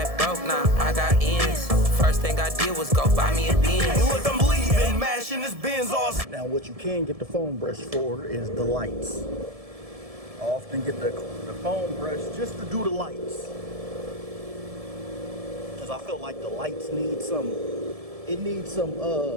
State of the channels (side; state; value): left; late; 1.7 ms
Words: broke, now I got ends. First thing I did was go buy me a Benz. Look, I'm leaving, mashing this Benz off. Now what you can get the foam brush for is the lights. I often get the foam brush just to do the lights, because I feel like the lights need some, it needs some